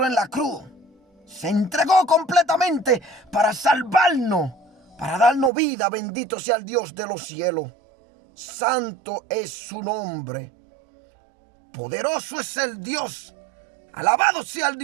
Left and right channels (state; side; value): drops out; left; at 5.5 s